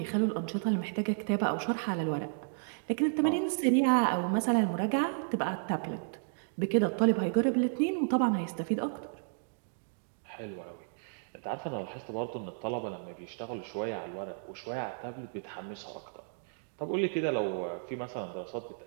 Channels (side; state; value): left; silent; digital silence